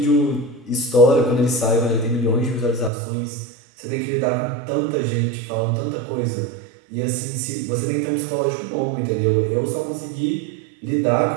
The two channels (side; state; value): left; drops out; at 2.9 s